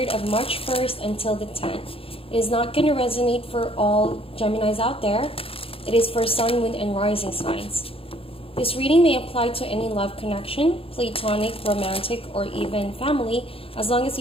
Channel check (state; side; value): late; right; 0.27 ms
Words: of March 1st until the 10th. It is not going to resonate for all Geminis out there. It is for Sun, Moon, and Rising signs. This reading may apply to any love connection, platonic, romantic, or even family. As long as